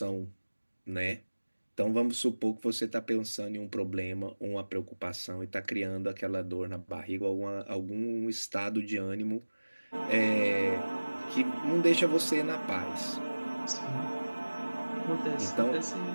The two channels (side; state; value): both; inverted; correlation -1.00